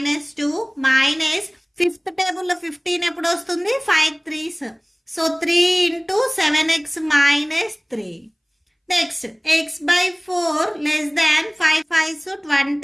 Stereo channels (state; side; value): identical; both; correlation 1.00